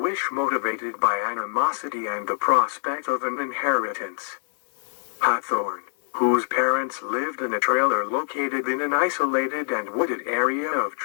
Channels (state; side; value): silent; right; digital silence